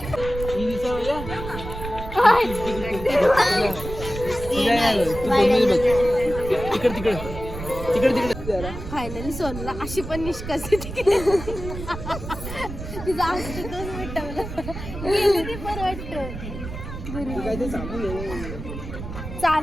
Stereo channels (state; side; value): noise; right; rumble, 9 dB below the sound